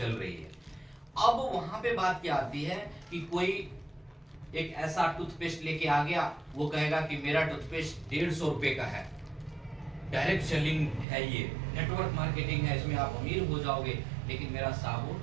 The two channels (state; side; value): drops out; left; at 11.1 s